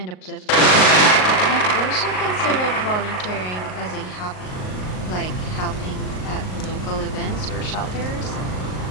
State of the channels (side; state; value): right; late; 38 ms